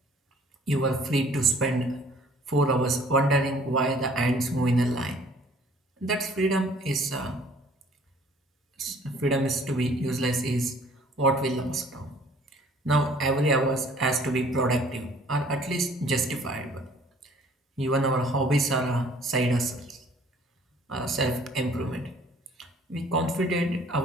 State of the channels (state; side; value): normal; both; correlation 0.56